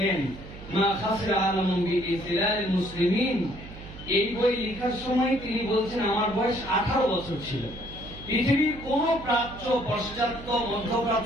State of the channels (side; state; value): right; noise; hum, 15 dB below the sound